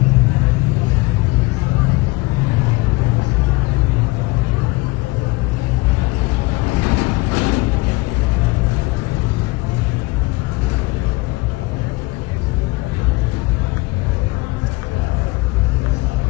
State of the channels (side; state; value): right; quieter; 22.9 dB